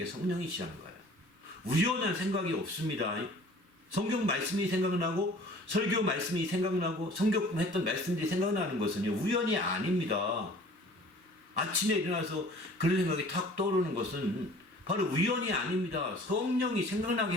게 성령이시라는 거예요. 우연한 생각이 없습니다. 성경 말씀이 생각나고 설교 말씀이 생각나고 성경 했던 말씀들이 생각나는 것은요 우연이 아닙니다. 아침에 일어나서 그런 생각이 탁 떠오르는 것은 바로 우연이 아닙니다. 성령이 생각나게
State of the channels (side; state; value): left; late; 1.1 ms